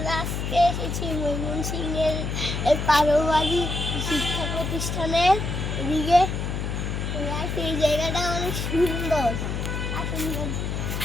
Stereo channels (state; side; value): noise; left; hum, 3 dB below the sound